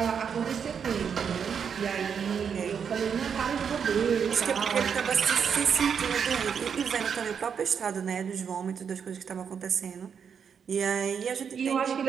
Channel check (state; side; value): quieter; left; 7.1 dB